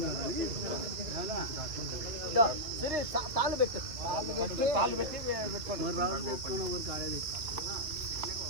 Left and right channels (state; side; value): late; left; 2.8 ms